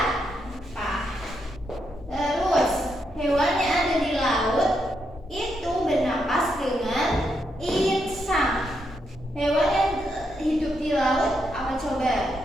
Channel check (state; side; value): normal; both; correlation 0.80